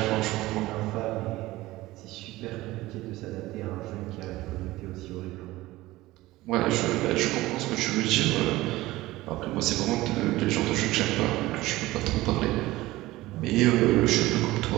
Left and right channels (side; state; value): left; quieter; 18.2 dB